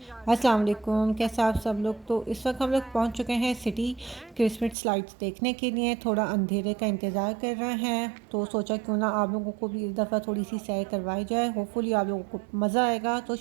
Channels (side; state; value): left; drops out; at 4.8 s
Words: अस्सलाम वालेकुम, कैसे आप सब लोग। तो इस वक्त हम लोग पहुंच चुके हैं सिटी क्रिसमस लाइट्स देखने के लिए। थोड़ा अंधेरे का इंतज़ार कर रहे हैं तो सोचा क्यों ना आप लोगों को भी इस दफ़ा थोड़ी सी सैर करवाई जाए। होपफुली आप लोगों को मज़ा आएगा। तो